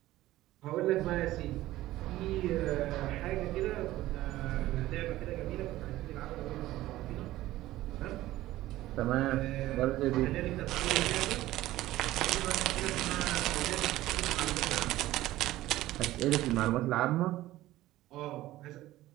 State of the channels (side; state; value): left; quieter; 15.9 dB